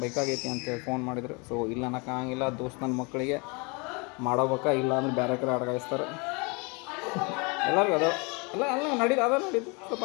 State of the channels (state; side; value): quieter; right; 30.4 dB